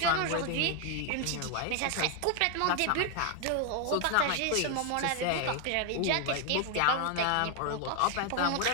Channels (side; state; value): both; different; correlation 0.00